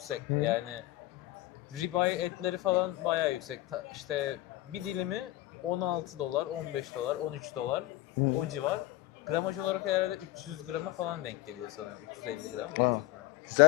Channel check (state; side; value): quieter; right; 16.8 dB